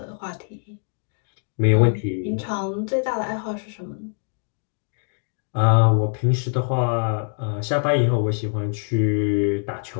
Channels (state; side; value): silent; right; 55 dB below the other